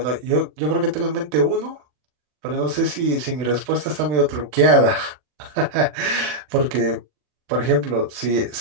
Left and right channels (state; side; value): late; left; 40 ms